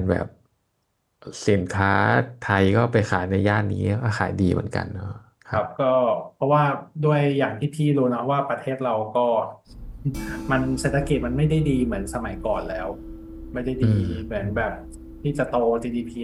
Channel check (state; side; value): identical; both; correlation 1.00